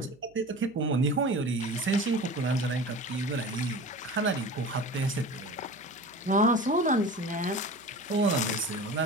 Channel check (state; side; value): noise; right; hum, 29 dB below the sound